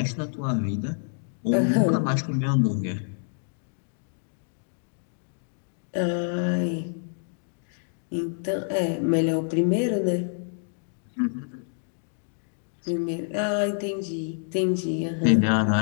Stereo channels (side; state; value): right; silent; digital silence